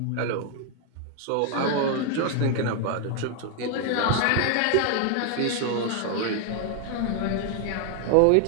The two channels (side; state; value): both; different; correlation 0.00